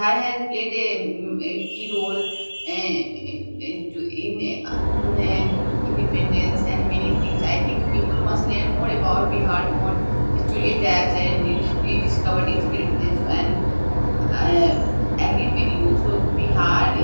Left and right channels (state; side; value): inverted; both; correlation -1.00